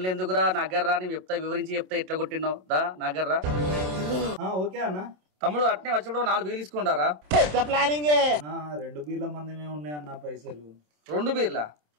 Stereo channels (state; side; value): late; left; 27 ms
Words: ఎందుకురా నగర్రా నేను చెప్తా వివరించి చెప్తా ఎట్లా కొట్టినావు దా నగర్రా ఓకే అన్న. తమ్ముడు అట్నే వచ్చినప్పుడు 4 బీర్లు తీసుకుంటారా నా 2 బీర్ల మందమే ఉన్నాయన్న పైసలు. 2 బీర్లా